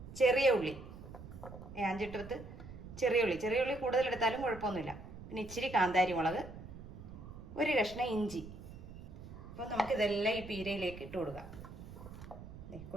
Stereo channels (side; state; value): right; noise; rumble, 13 dB below the sound